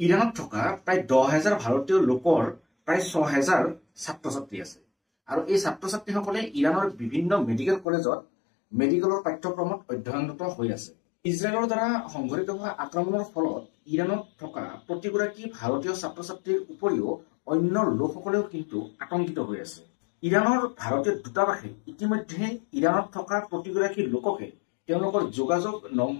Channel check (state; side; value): drops out; right; at 7.9 s